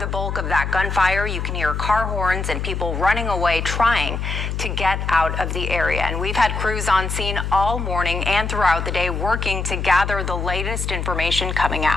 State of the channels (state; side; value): noise; left; hum, 3 dB below the sound